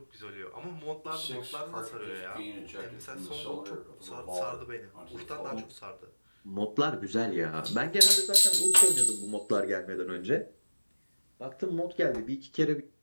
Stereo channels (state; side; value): inverted; both; correlation -1.00